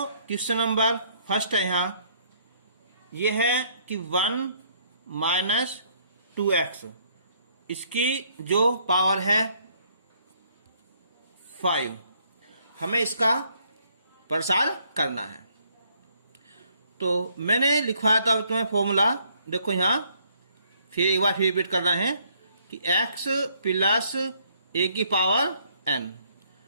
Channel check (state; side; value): inverted; both; correlation -0.66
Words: क्वेश्चन नंबर फर्स्ट है यहाँ, ये है कि 1 माइनस 2x, इसकी जो पावर है 5, हमें इसका प्रसार करना है। तो मैंने लिखवाया था तुम्हें फॉर्मूला, देखो यहाँ फिर एक बार फिर रिपीट करना है कि x प्लस a की पावर n।